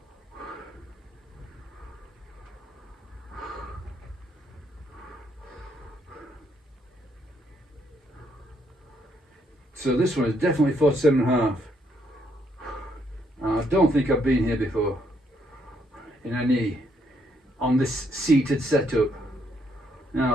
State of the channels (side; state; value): both; normal; correlation 0.73